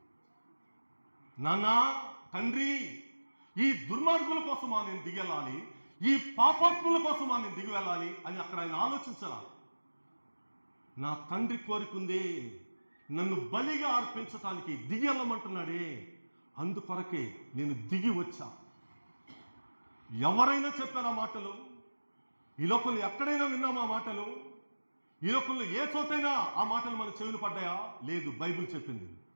నాన్నా, తండ్రి, ఈ దుర్మార్గుల కోసమా నేను దిగి వెళ్ళాలి, ఈ పాపాత్ముల కోసమా నేను దిగి వెళ్ళాలి అని అక్కడ ఆయన ఆలోచించాల. నా తండ్రి కోరికుందే, నన్ను బలిగా అర్పించటానికి దిగి వెళ్ళమంటున్నాడే, అందుకొరకే నేను దిగి వచ్చా. ఎవరైనా చెప్పారా మాటలు? ఈ లోకంలో ఎక్కడైనా విన్నామా మాటలు? ఈ లోకంలో ఏ చోటైనా ఆ మాటలు మన చెవులు పడ్డాయా? లేదు. బైబిల్ చెప్పింది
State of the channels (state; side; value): inverted; both; correlation -1.00